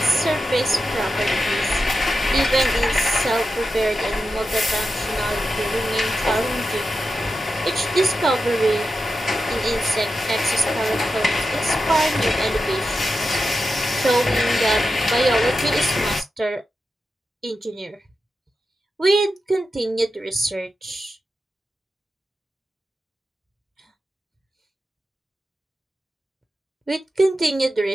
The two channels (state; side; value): normal; both; correlation 0.90